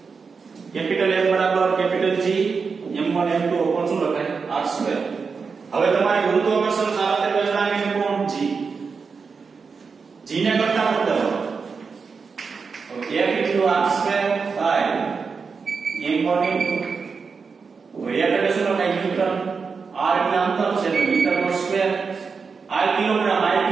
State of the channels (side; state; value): left; quieter; 5.2 dB